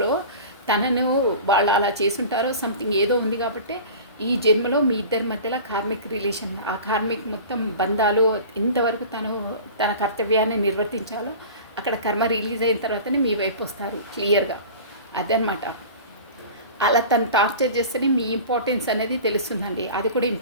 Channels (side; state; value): both; inverted; correlation -0.37